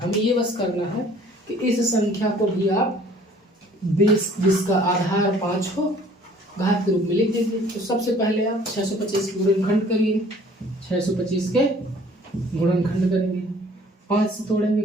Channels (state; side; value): normal; both; correlation 0.54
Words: ये बस करना है कि इस संख्या को भी आप 20 जिसका आधार 5 हो घात के रूप में लिख दीजिए। तो सबसे पहले आप 625 के गुणनखंड करिए, 625 के गुणनखंड करेंगे, 5 से तोड़ेंगे,